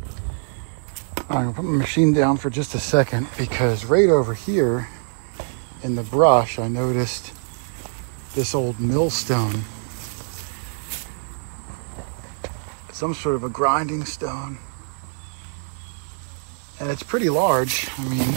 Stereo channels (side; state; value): left; silent; digital silence